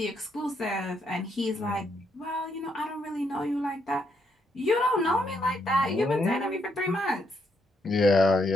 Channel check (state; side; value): normal; both; correlation 0.76